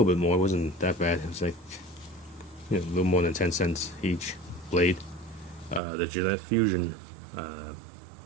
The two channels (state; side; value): drops out; left; at 5.8 s